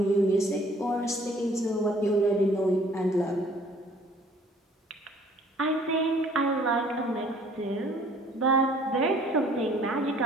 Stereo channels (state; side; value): normal; both; correlation 0.56